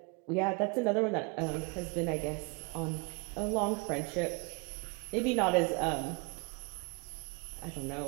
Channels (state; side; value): quieter; left; 31.3 dB